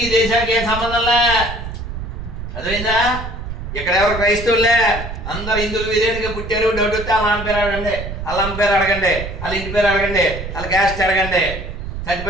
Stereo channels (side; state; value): right; noise; rumble, 8 dB below the sound